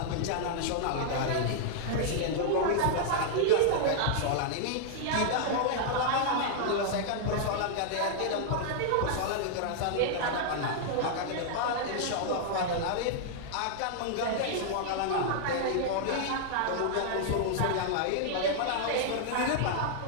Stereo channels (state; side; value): different; both; correlation -0.01